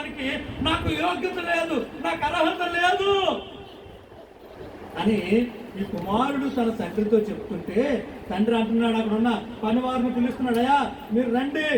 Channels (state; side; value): identical; both; correlation 1.00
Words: నాకు యోగ్యత లేదు, నాకు అర్హత లేదు అని ఈ కుమారుడు తన తండ్రితో చెప్తుంటే తండ్రి అంటున్నాడు, అక్కడ ఉన్న పనివారిని పిలుస్తున్నాడు. అయ్యా, మీరు రండి,